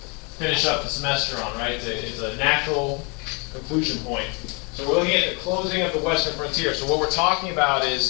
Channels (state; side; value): quieter; right; 32.1 dB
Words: finish up the semester on, right? It's a natural conclusion point. So we're looking at the closing of the Western frontier. So what we're talking about